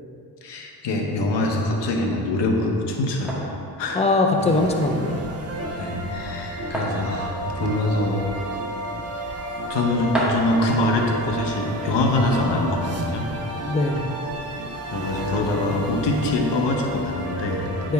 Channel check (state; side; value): normal; both; correlation 0.34